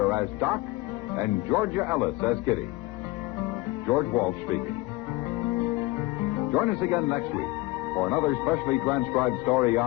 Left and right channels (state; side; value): quieter; right; 20.2 dB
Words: as Doc, and Georgia Ellis as Kitty. George Walsh speaking. Join us again next week for another specially transcribed story